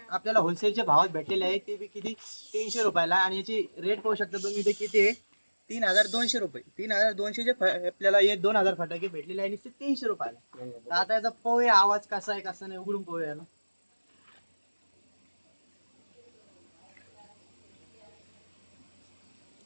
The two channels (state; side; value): inverted; both; correlation -1.00